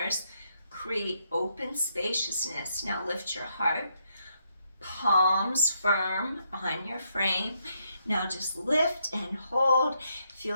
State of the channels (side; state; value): both; inverted; correlation -0.77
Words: Create open spaciousness. Now lift your heart, palms firm on your frame. Now just lift and hold.